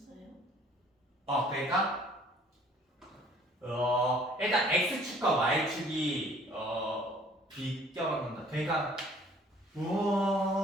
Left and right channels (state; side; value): normal; both; correlation 0.56